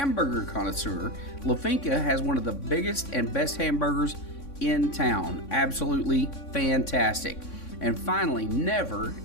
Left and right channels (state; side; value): late; right; 3.6 ms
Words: connoisseur, La Finca has one of the biggest and best hamburgers in town. Absolutely fantastic. And finally, never,